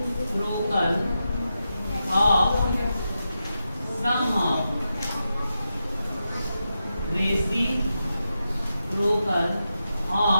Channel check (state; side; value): inverted; both; correlation -0.89